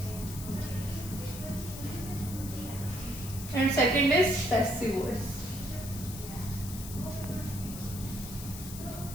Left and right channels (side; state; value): left; noise; hiss, 11 dB below the sound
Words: and second is passive voice.